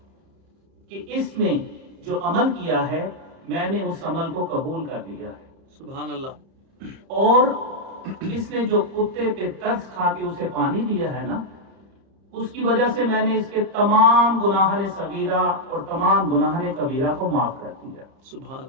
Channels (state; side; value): late; left; 30 ms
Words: کہ اس نے جو عمل کیا ہے میں نے اس عمل کو قبول کر لیا ہے. سبحان اللہ. اور اس نے جو کتے پہ ترس کھا کے اسے پانی دیا ہے نا، اس کی وجہ سے میں نے اس کے تمام گناہان صغیرہ اور تمام گناہان کبیرہ کو معاف کر دیا. سبحان